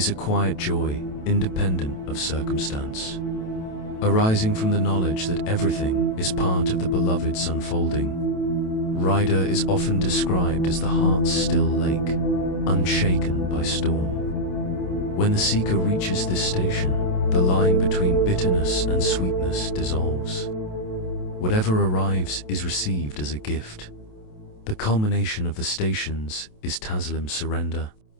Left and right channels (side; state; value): right; late; 28 ms